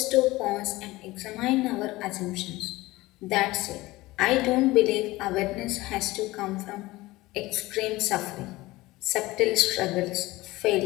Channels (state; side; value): quieter; right; 19.5 dB